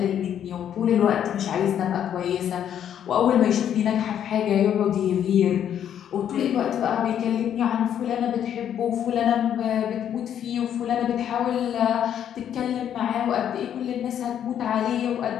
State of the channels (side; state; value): right; quieter; 9.7 dB